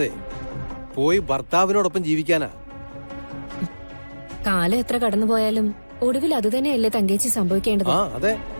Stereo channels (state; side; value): inverted; both; correlation -1.00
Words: പോയി ഭർത്താവിനോടൊപ്പം ജീവിക്കാനാ. കാലം എത്ര കടന്നുപോയാലും ഒടുവിൽ അതുതന്നെയല്ലേ തങ്കേച്ചി സംഭവിക്കേണ്ടത്. അതെ.